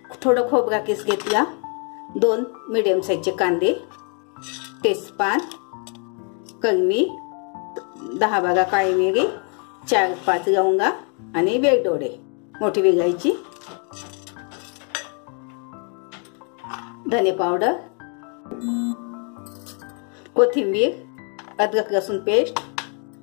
थोडं खोबरा किस घेतला, 2 मीडियम साइजचे कांदे, तेजपान, कलमी, 10-12 काळी मिरी, 4-5 लवंगा आणि वेलदोडे मोठी वेलायची, धने पावडर, कोथिंबीर, अद्रक लसूण पेस्ट,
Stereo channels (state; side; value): quieter; right; 39.5 dB